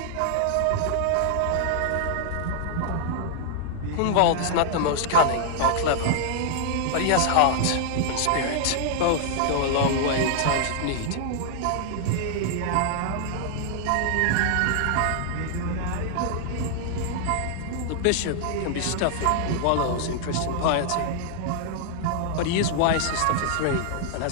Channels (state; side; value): different; both; correlation -0.01